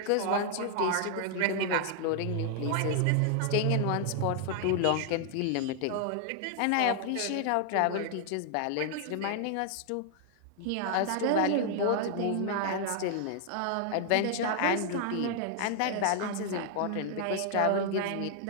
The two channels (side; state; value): both; different; correlation 0.00